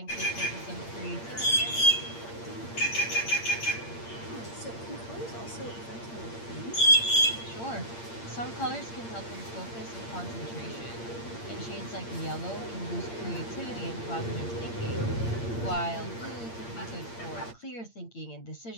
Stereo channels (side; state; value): right; late; 8.7 ms